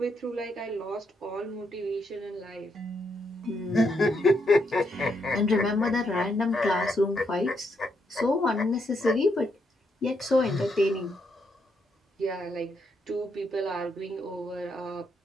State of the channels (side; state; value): both; normal; correlation 0.78